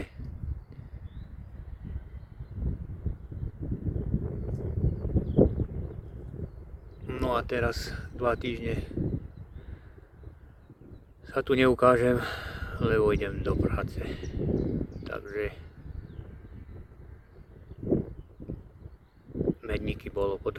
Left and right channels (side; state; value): both; identical; correlation 1.00